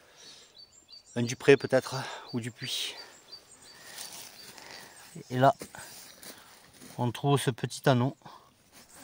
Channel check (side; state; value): both; identical; correlation 1.00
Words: Un Dupré peut-être, ou du Puy. Et là, on trouve ce petit anneau.